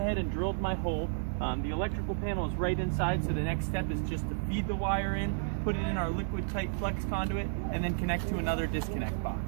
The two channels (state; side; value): silent; left; digital silence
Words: and drilled my hole. The electrical panel is right inside, so the next step is just to feed the wire in, put it in our liquid tight flex conduit, and then connect to another disconnect box.